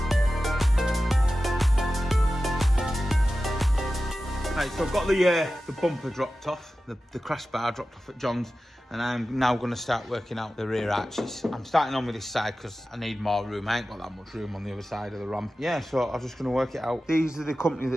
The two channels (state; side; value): normal; both; correlation 0.94